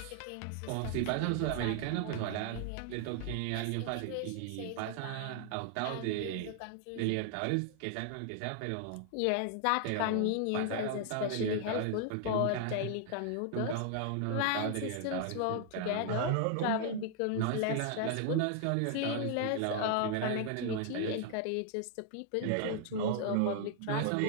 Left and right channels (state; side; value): different; both; correlation 0.00